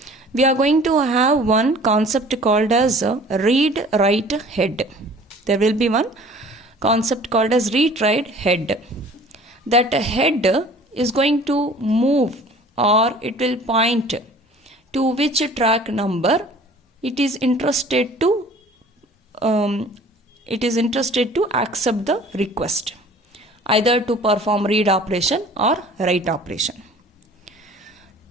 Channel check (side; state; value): both; normal; correlation 0.48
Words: we are going to have one concept called as read-write head. There will be one concept called as read-write head. That head is going to move, or it will point to which track number it is interested to accept the request, either to perform read operation or write operation.